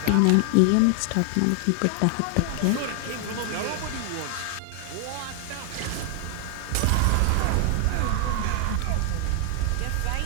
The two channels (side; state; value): both; different; correlation 0.00